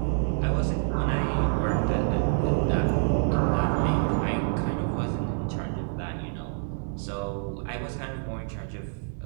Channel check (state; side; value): silent; left; digital silence